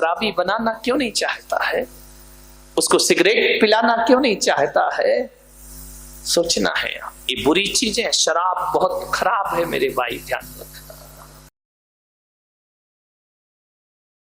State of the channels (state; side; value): identical; both; correlation 1.00